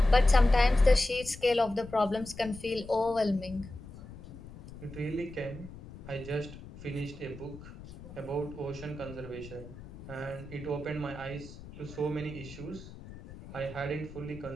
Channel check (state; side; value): noise; left; rumble, 15 dB below the sound